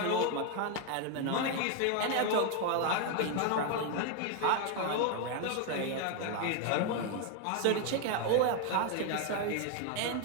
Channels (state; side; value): different; both; correlation 0.01